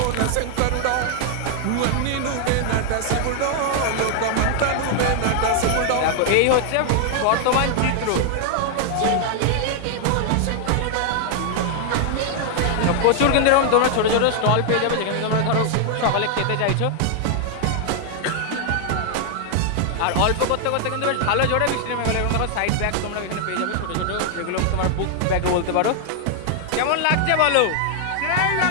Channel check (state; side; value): different; both; correlation 0.00